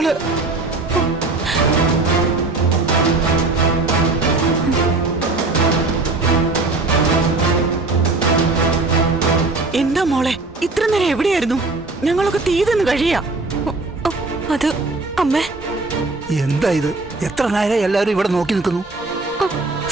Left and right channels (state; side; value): quieter; left; 3.4 dB